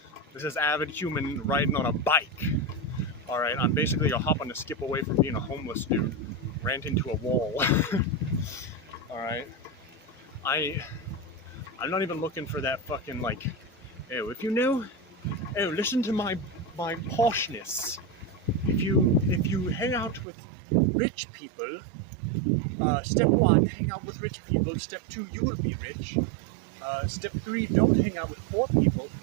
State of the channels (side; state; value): left; drops out; at 20.2 s